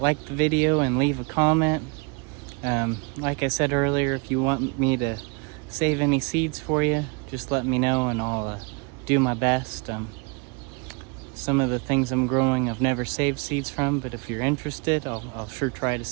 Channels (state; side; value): quieter; left; 32.7 dB